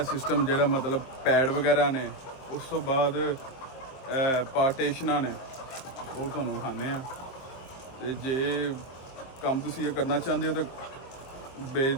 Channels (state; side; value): late; right; 23 ms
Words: ਸਿਸਟਮ ਜਿਹੜਾ ਮਤਲਬ ਪੈਡ ਵਗੈਰਾ ਨੇ, ਉਸ ਤੋਂ ਬਾਅਦ ਪਾਰਟੀਸ਼ਨਾਂ ਨੇ, ਉਹ ਤੁਹਾਨੂੰ ਵਿਖਾਉਂਦੇ ਆ। ਅਤੇ ਜੇ ਕੰਮ ਤੁਸੀਂ ਇਹ ਕਰਨਾ ਚਾਹੁੰਦੇ ਹੋ ਤਾਂ